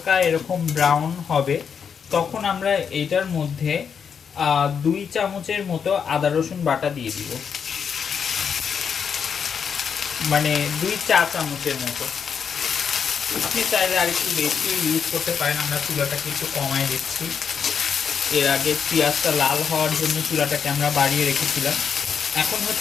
এরকম ব্রাউন হবে, তখন আমরা এটার মধ্যে 2 চামচের মতো আদা রসুন বাটা দিয়ে দিব, মানে 2 চা চামচের মতো। আপনি চাইলে আর একটু বেশি ইউজ করতে পারেন, আমরা চুলাটাকে একটু কমায় দিচ্ছি। এর আগে পেঁয়াজটা লাল হওয়ার জন্য চুলাটাকে আমরা বাড়িয়ে রেখেছিলাম। এখন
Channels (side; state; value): right; quieter; 6.9 dB